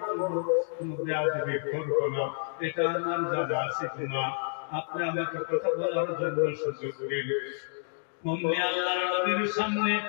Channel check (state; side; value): silent; right; digital silence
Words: বলবো, কোনো বেয়াদবি করবো না, এটা আমার জানা আছে না। আপনি আমাকে কথা বলার জন্য সুযোগ দিন। মম্মি আল্লাহর নবীর সামনে